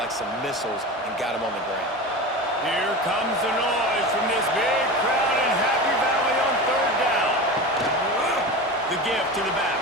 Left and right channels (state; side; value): normal; both; correlation 0.28